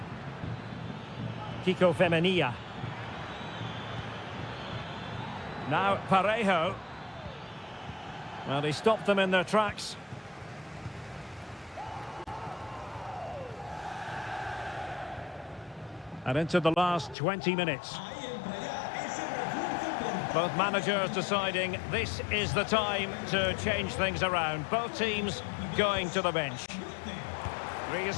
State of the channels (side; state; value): right; drops out; at 17.2 s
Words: Kiko Femenia. Now Parejo. Well, he stopped them in their tracks. And into the last 20 minutes. Both managers deciding this is the time to change things around. Both teams going to the bench.